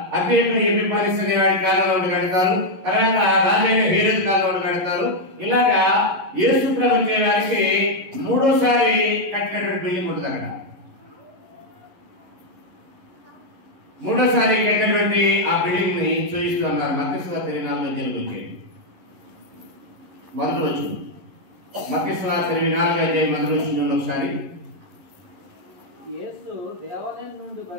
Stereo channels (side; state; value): left; late; 11 ms